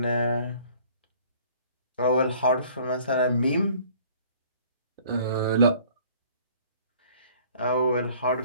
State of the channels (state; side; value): inverted; both; correlation -0.54